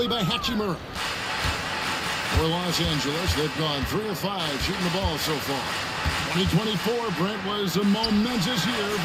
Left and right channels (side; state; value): both; identical; correlation 1.00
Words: by Hachimura. For Los Angeles, they've gone 3 of 5 shooting the ball so far. 2024, Brent, was a momentous year